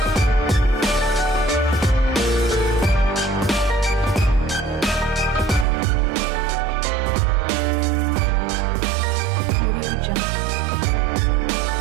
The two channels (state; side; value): drops out; left; at 5.7 s